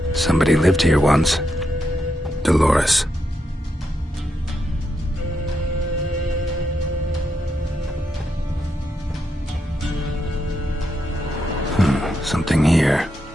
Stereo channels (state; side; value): normal; both; correlation 0.83